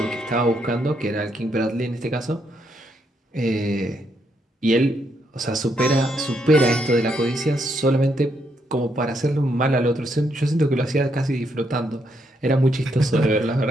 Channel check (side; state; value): both; normal; correlation 0.77